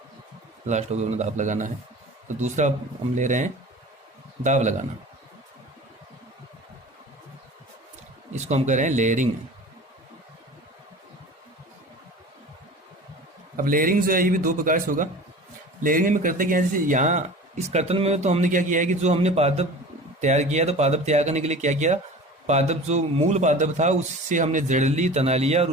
लास्ट होगा अपना दाब लगाना है। तो दूसरा हम ले रहे हैं दाब लगाना, इसको हम कह रहे हैं लेयरिंग। अब लेयरिंग जो है ये भी दो प्रकार से होगा। लेयरिंग में करते क्या है, जैसे यहाँ इस कर्तन में तो हमने क्या किया है कि जो हमने पादप तैयार किया, तो पादप तैयार करने के लिए क्या किया, पादप जो मूल पादप था उससे हमने जड़ ली, तना लिया और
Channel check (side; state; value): both; normal; correlation 0.38